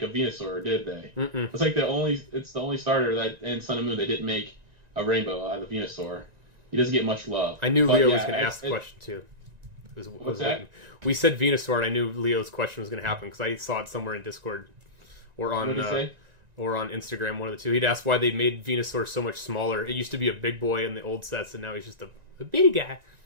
a Venusaur, did they?" Mm-mm. It's like it's the only starter that in Sun and Moon they didn't make a Rainbow out of Venusaur. He doesn't get much love. I knew Leo was going to ask the question too. What's that? We said Venusaur, and I knew Leo's question was going to happen because I saw it somewhere in Discord or on Instagram, one of the two. He'd asked why they made Venusaur so much smaller. It used to be a big boy in the old sets, and now he's just a bitty guy.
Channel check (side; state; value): left; late; 1.9 ms